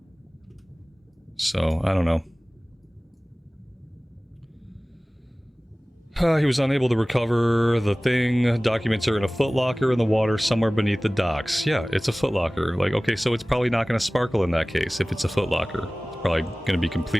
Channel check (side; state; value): both; normal; correlation 0.98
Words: So, I don't know. He was unable to recover the thing. Documents are in a footlocker in the water somewhere beneath the docks. Yeah, it's a footlocker. Like, okay, so it's probably not going to sparkle in that case if it's a footlocker. It's probably going to be